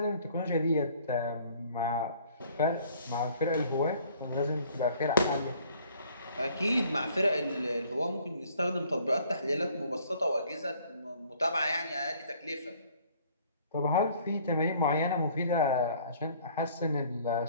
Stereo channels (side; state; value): both; inverted; correlation -0.58